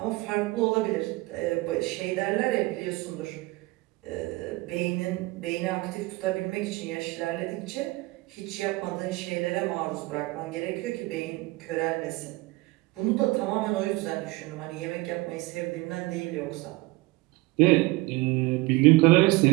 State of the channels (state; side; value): quieter; left; 21.7 dB